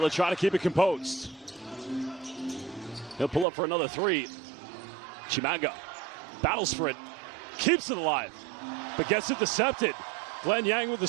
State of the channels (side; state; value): left; drops out; at 3.5 s